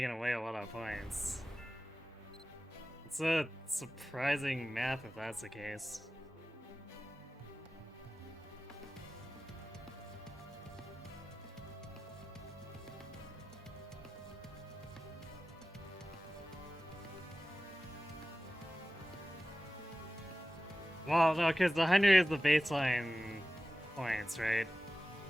away a lot of points. It's a surprising map if that's the case. Well, no, because the 100 is the baseline points, right?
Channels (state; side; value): normal; both; correlation 0.96